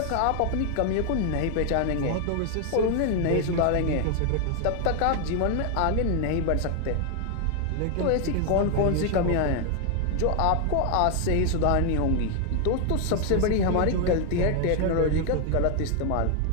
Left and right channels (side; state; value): both; different; correlation 0.00